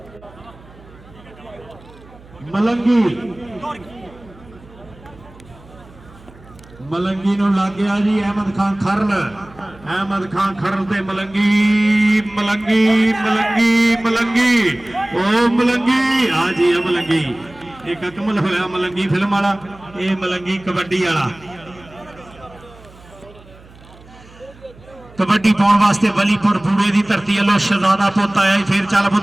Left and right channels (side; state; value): right; noise; hum, 23 dB below the sound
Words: मलंगी मलंगी नूं लग गया जी अहमद खान खरल। अहमद खान खरल ते मलंगी मलंगी मलंगी मलंगी ओ मलंगी। हाँ जी मलंगी एक अकमल होया मलंगी फिल्म वाला। ये मलंगी कबड्डी वाला। कबड्डी पाउण वास्ते वलीपुर बूड़े की धरती वालों शहजादा पुत आया। फिर चल